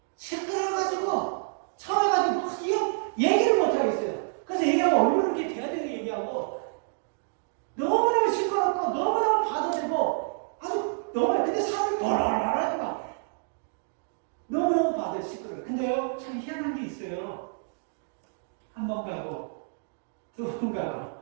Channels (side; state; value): left; silent; digital silence